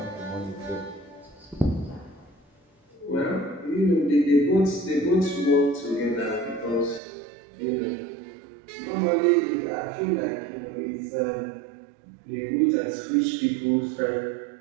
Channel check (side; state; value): left; drops out; at 7.0 s